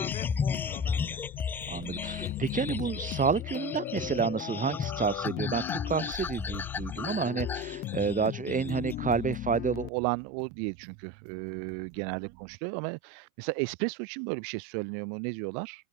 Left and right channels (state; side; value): drops out; left; at 9.9 s